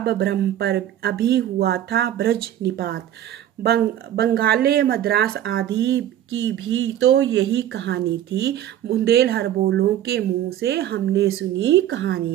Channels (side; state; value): left; quieter; 11.6 dB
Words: ब्रह्म पर अभी हुआ था ब्रज निपात। बंगाले मद्रास आदि की भी तो यही कहानी थी, बुंदेल हरबोलों के मुंह से हमने सुनी